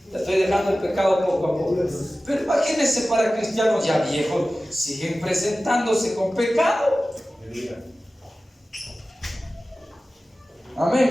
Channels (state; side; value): normal; both; correlation 0.96